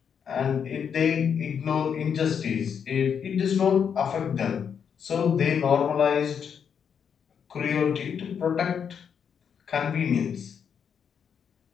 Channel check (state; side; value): quieter; right; 7.4 dB